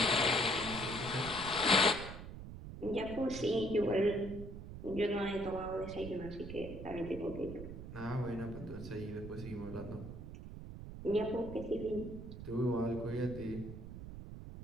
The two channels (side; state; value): right; noise; rumble, 10 dB below the sound